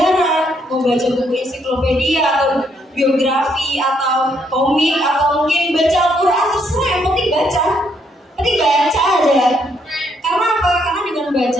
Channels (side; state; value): both; normal; correlation 0.72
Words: mau baca buku ensiklopedia atau biografi atau komik atau mungkin baca Al-Quran, terserah, yang penting baca. Penting baca aja. Karena apa? Karena dengan